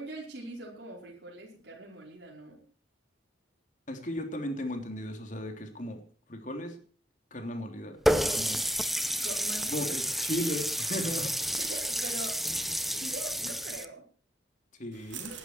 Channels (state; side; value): normal; both; correlation 0.79